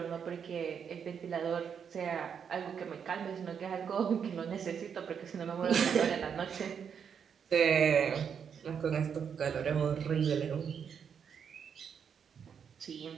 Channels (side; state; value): left; quieter; 7.3 dB